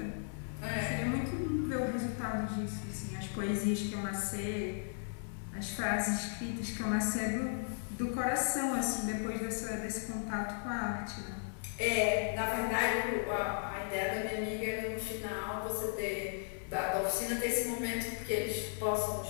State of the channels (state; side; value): silent; right; 54 dB below the other